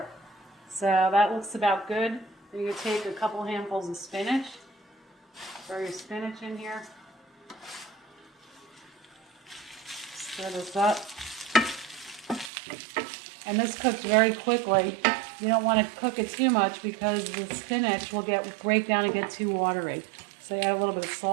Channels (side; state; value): left; drops out; at 12.5 s